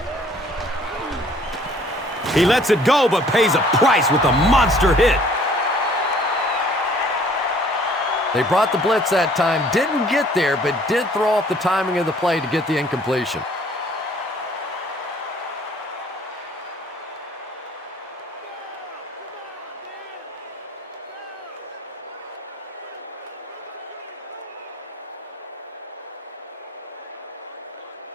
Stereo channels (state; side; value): normal; both; correlation 0.57